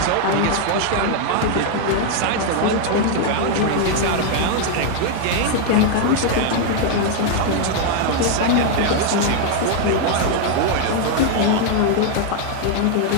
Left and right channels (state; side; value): different; both; correlation 0.00